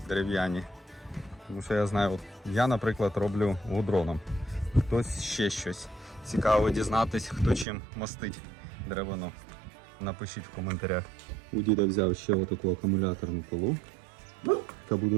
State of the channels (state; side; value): drops out; left; at 7.7 s